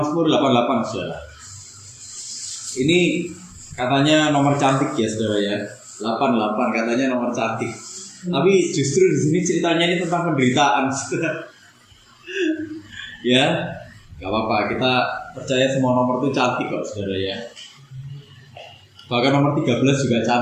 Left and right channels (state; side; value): identical; both; correlation 1.00